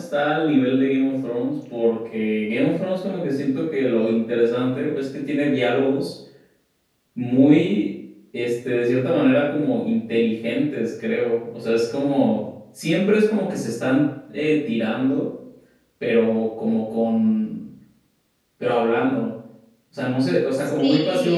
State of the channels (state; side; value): identical; both; correlation 1.00